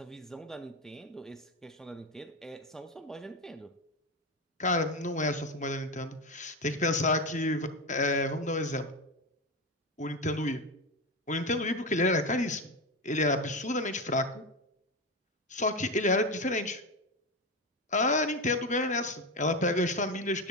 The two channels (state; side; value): normal; both; correlation 0.16